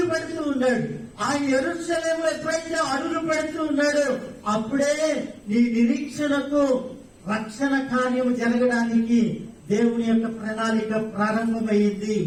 పెడుతూ ఉన్నాడు. ఆయన యెరూషలేములో ఎప్పుడైతే అడుగు పెడుతూ ఉన్నాడో అప్పుడే నీ నిరీక్షణకు రక్షణ కార్యము జరగడానికి దేవుని యొక్క ప్రణాళిక ప్రారంభమైంది.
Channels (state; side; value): identical; both; correlation 1.00